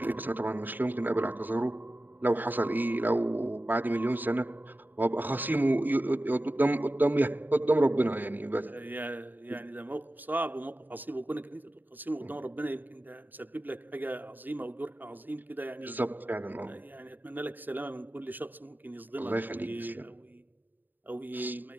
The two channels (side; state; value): left; late; 0.089 ms